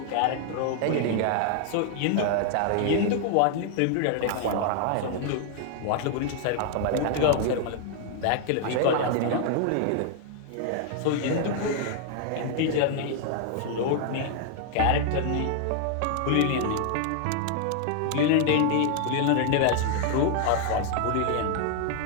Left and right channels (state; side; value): different; both; correlation 0.00